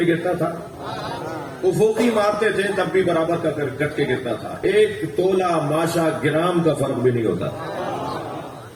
گرتا تھا، افقی مارتے تھے تب بھی برابر کا کٹ کے گرتا تھا، ایک تولہ ماشا گرام کا فرق بھی نہیں ہوتا۔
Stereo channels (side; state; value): both; identical; correlation 1.00